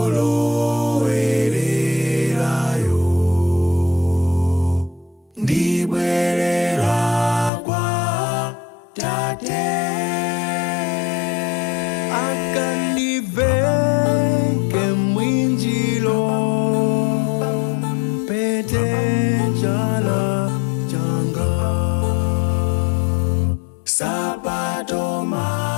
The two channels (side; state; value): right; drops out; at 7.5 s